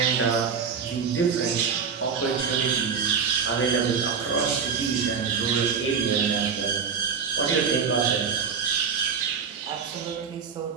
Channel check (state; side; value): quieter; left; 6.2 dB